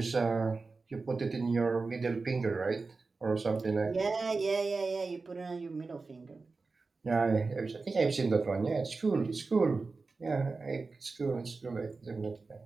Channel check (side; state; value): left; quieter; 4.0 dB